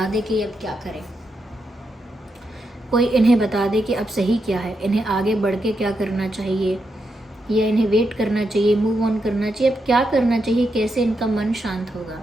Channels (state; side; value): normal; both; correlation 0.84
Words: दे कि अब क्या करें, कोई इन्हें बता दे कि अब सही क्या है, इन्हें आगे बढ़ के क्या करना चाहिए, या इन्हें वेट करना चाहिए, मूव ऑन करना चाहिए, अब क्या करना चाहिए, कैसे इनका मन शांत होगा।